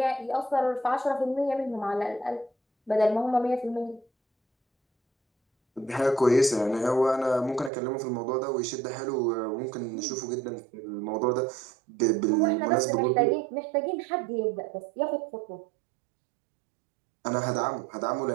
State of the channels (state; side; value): drops out; left; at 7.7 s